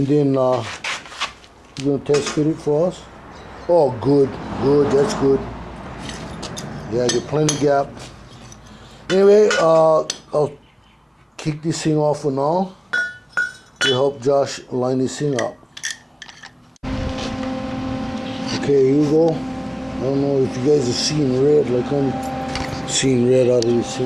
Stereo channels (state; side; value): identical; both; correlation 1.00